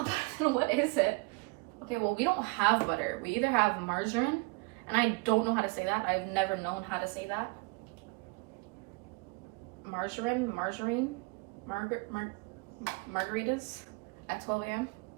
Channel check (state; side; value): quieter; left; 28.7 dB